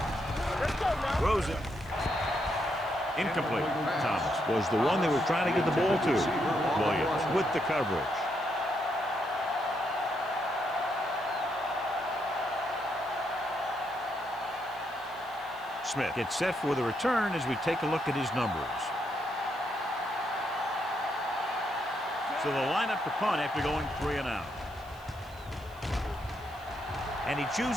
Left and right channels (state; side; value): noise; right; hiss, 25 dB below the sound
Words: Let's go now. Throws it. Incomplete. Thomas was the one they were trying to get the ball to. Williams with the coverage. Smith gets set for the return as we take a look at his numbers. So they'll line up to punt after going 3 and out. And he